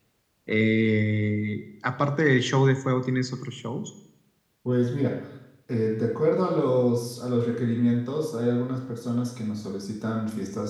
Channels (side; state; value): both; identical; correlation 1.00